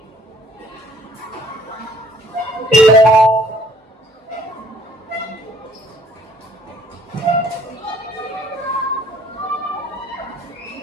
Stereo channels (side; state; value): both; normal; correlation 0.59